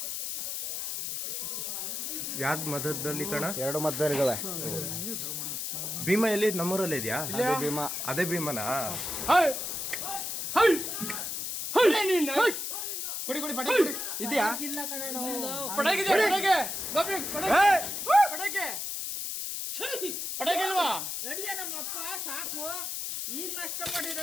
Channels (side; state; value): left; noise; hiss, 4 dB below the sound